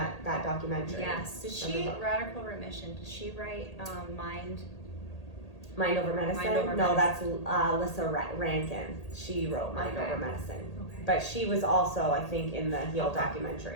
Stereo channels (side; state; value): right; late; 1.8 ms